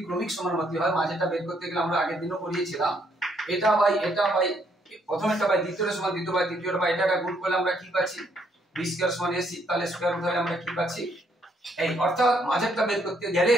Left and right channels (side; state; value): both; normal; correlation 0.71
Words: ক্রমিক সমানুপাতি হয়, মাঝেরটা বের করতে গেলে আমরা আগের দিনও পড়িয়েছিলাম, এটা বাই প্রথমেরটা বাই দ্বিতীয়টা সমান দ্বিতীয় বাই তৃতীয়টা বাই এটাকে গুণ করলে আমরা কি পাচ্ছি b² সমান ac, তাহলে স্কয়ার রুট হলে আমরা কি পাচ্ছি এই, অর্থাৎ মাঝেরটা বের করতে গেলে